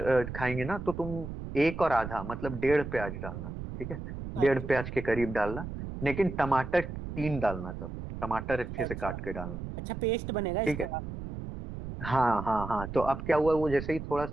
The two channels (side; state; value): right; noise; rumble, 8 dB below the sound